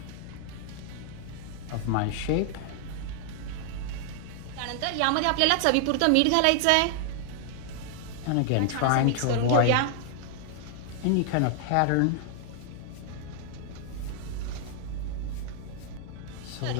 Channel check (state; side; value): different; both; correlation 0.00